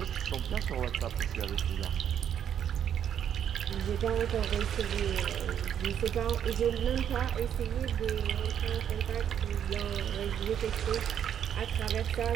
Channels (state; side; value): quieter; left; 9.2 dB